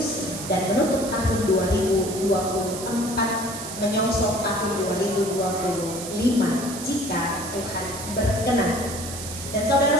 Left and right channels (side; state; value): right; noise; hiss, 9 dB below the sound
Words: dan menutup tahun 2024, menyongsong tahun 2025 jika Tuhan berkenan. Dan